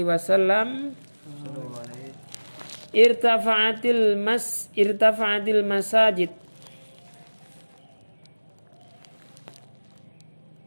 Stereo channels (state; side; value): inverted; both; correlation -1.00